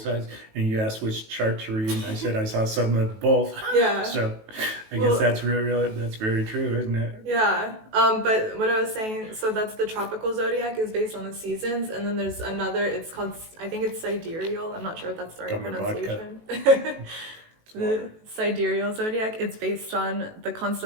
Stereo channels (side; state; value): left; late; 18 ms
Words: and you asked which chart to read, and I said I saw some of both. Yeah. So I guess that's really that's very true, isn't it? Yeah. But what I was saying, so that's the tropical zodiac is based on the seasons, and then there's another. It's called, I think it's sidereal. I'm not sure if that's the right Dumber pronunciation. The sidereal zodiac. It's based on the